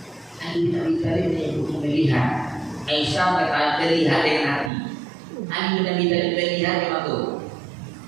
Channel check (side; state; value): left; drops out; at 4.7 s